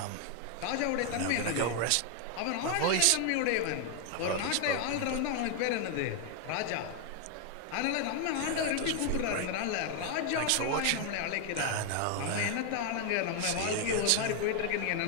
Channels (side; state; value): both; different; correlation 0.00